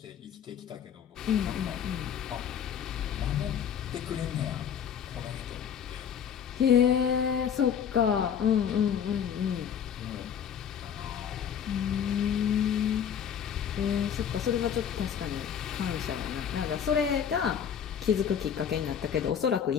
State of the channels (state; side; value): quieter; right; 8.3 dB